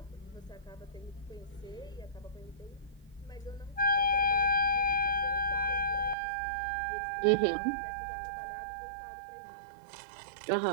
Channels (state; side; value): drops out; left; at 6.2 s